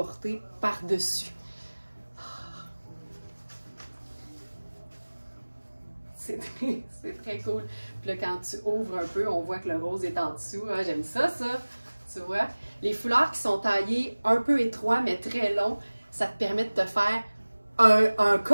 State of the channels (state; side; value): inverted; both; correlation -1.00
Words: par-dessus. C'est très cool. Puis là, quand tu ouvres un peu, on voit que le rose est en dessous. Ah, j'aime ça, tu vois. Les foulards qui sont taillés un peu étroits, mais très longs, ça te permet de te faire un